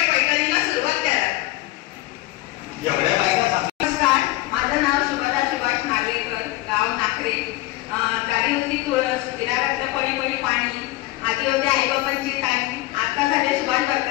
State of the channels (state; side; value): quieter; right; 18.6 dB